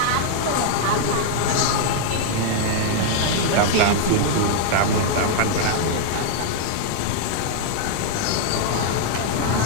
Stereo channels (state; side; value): different; both; correlation -0.01